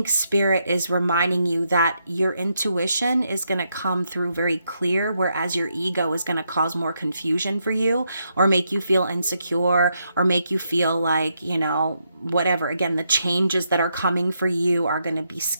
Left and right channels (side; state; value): both; inverted; correlation -0.80